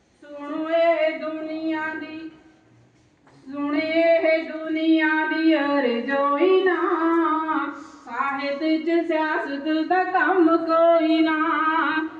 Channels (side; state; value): both; identical; correlation 1.00